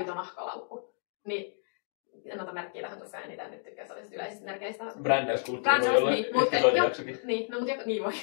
nahkalaukku, niin en ota merkkiä tähän tosiaan eniten nyt tykkää sellaisista yleisistä merkeistä. Brändäyskulttuuri voi olla episodijaksokin. Niin, no, niin voi.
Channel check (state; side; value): silent; right; 57 dB below the other